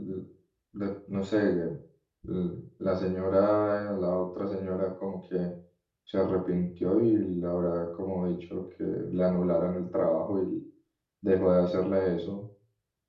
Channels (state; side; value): identical; both; correlation 1.00